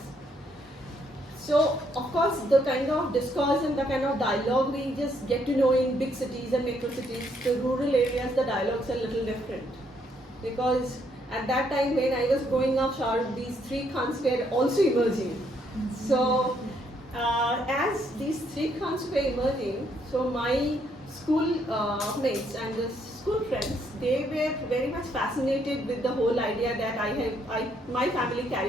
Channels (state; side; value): normal; both; correlation 0.72